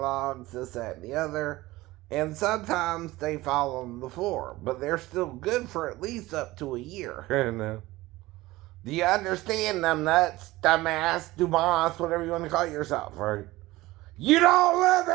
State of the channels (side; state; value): left; quieter; 18.8 dB